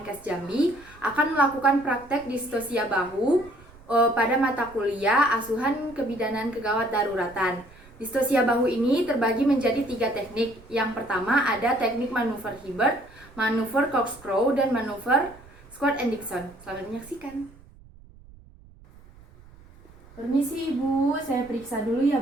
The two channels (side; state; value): right; noise; rumble, 23 dB below the sound